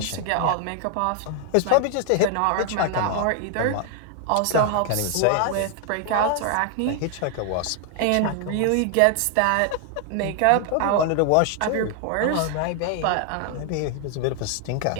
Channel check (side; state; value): both; different; correlation 0.00